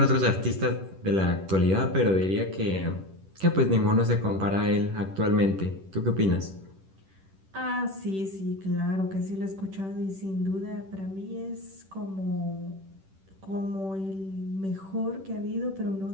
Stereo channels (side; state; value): left; late; 10 ms